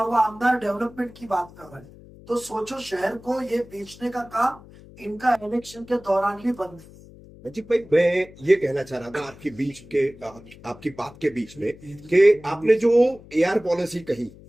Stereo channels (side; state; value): left; noise; hum, 21 dB below the sound